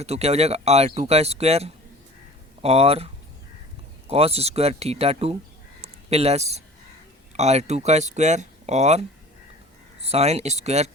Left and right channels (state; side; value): normal; both; correlation 0.43